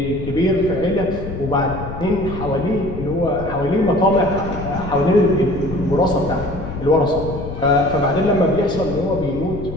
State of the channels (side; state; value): left; noise; rumble, 9 dB below the sound